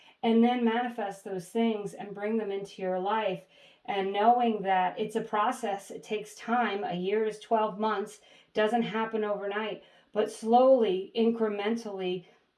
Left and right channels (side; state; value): both; identical; correlation 1.00